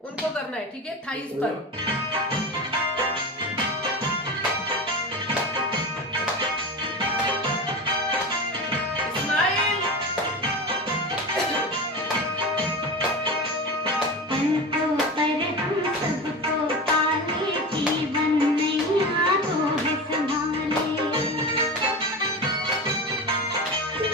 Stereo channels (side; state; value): both; normal; correlation 0.26